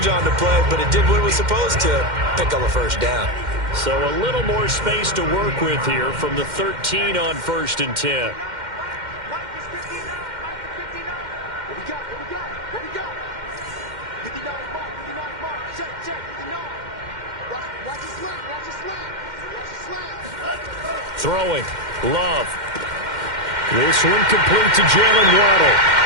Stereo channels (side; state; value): left; late; 2.1 ms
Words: on the play, but it did what it was supposed to, pick up a 1st down. So a little more space to work with here from the 13 on 1st and 10. Throwing, Love. This one complete to Jalen Waddle.